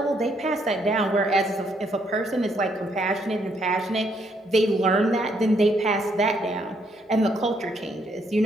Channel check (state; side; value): normal; both; correlation 0.72